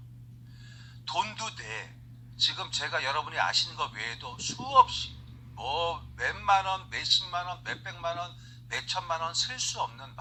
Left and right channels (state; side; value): identical; both; correlation 1.00